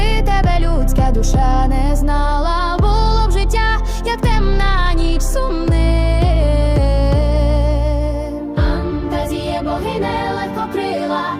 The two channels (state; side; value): identical; both; correlation 1.00